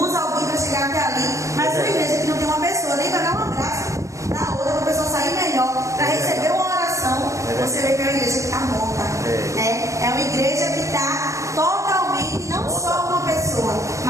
alguém para chegar até ali. Mas uma igreja que não tem uma pessoa nem para dar um abraço na outra, para a pessoa sair melhor, para receber uma oração, você vê que é uma igreja que está morta. Né? É uma igreja que está totalmente, não só uma pessoa,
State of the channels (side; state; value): left; late; 0.15 ms